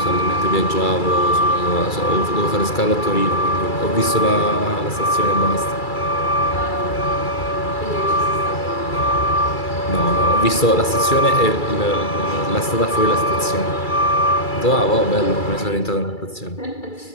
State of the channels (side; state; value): right; late; 2.3 ms